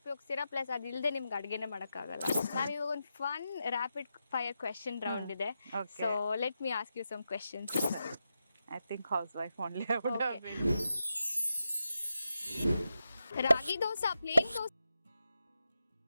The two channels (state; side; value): inverted; both; correlation -0.89